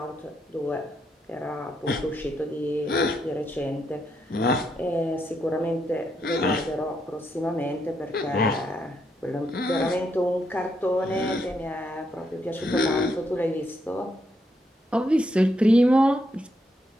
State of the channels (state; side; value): normal; both; correlation 0.78